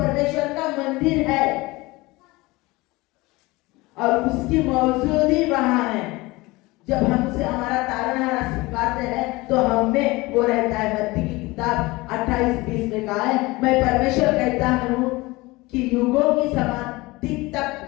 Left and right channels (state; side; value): quieter; right; 21.9 dB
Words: का मंदिर है और उसकी मौजूदगी वहां है। जब हम उसे हमारा तारणहारा स्वीकारते हैं तो हम में वो रहता है। मत्ती की किताब 28:20 में कहा है, मैं परमेश्वर कहता हूँ कि युगों की समाप्ति